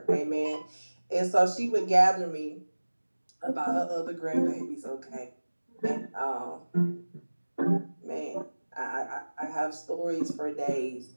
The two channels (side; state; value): both; inverted; correlation -1.00